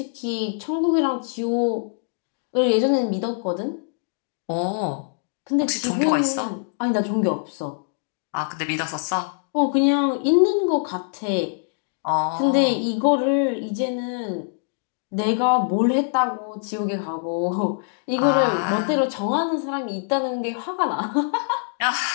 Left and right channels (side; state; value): right; silent; 63 dB below the other